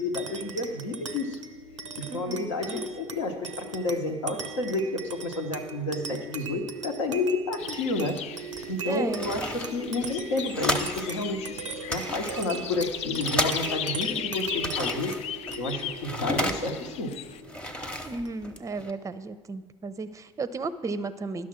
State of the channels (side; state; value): both; normal; correlation 0.28